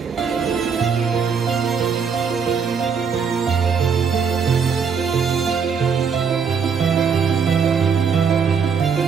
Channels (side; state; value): left; quieter; 6.3 dB